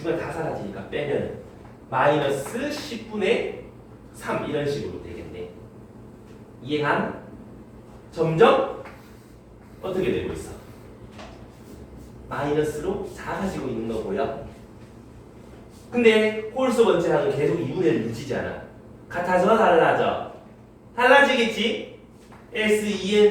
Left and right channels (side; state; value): both; identical; correlation 1.00